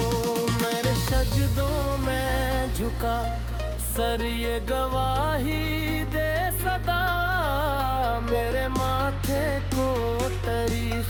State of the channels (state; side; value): identical; both; correlation 1.00